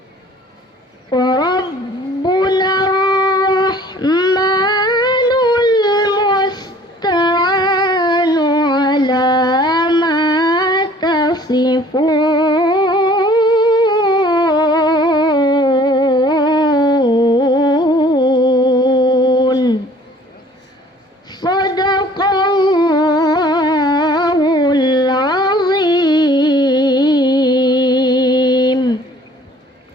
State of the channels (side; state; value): both; normal; correlation 0.53